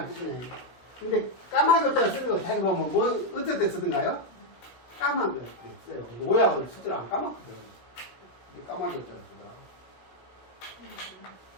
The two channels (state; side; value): late; right; 16 ms